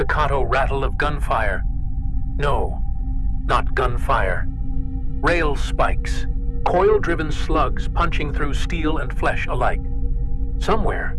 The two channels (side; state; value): both; identical; correlation 1.00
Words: rattle of gunfire. No, not gunfire. Rail spikes, coil-driven slugs punching through steel and flesh alike. Somewhere,